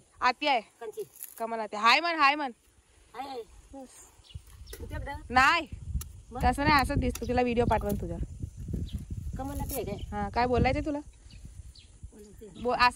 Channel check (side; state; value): both; identical; correlation 1.00